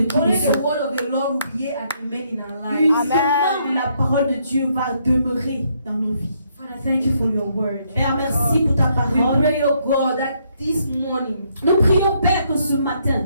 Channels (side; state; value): both; inverted; correlation -0.72